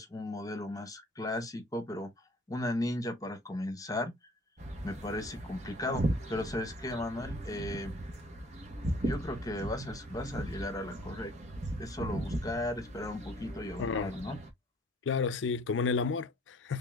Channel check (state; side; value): normal; both; correlation 0.54